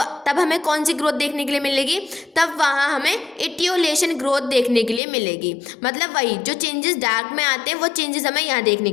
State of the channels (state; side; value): drops out; right; at 5.0 s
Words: तब हमें कौन सी ग्रोथ देखने के लिए मिलेगी, तब वहाँ हमें इटियोलेशन ग्रोथ देखने के लिए मिलेगी। मतलब वही जो चेंजेस डार्क में आते हैं वो चेंजेस हमें यहाँ देखने